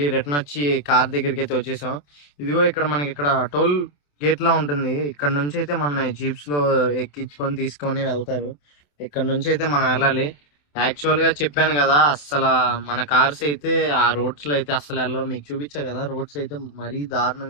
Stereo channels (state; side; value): late; right; 27 ms